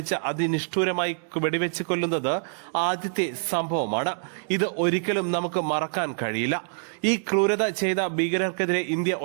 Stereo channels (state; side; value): silent; left; 61 dB below the other